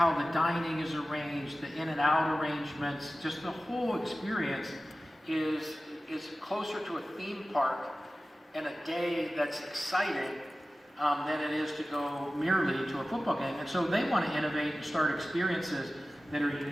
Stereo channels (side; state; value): both; normal; correlation 0.96